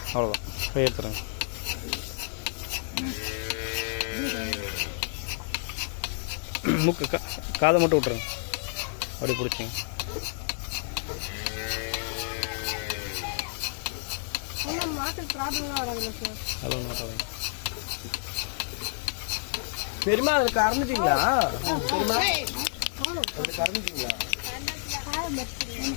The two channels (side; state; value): right; silent; 58 dB below the other